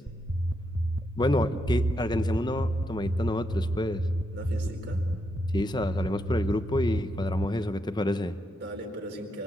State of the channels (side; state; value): both; normal; correlation 0.81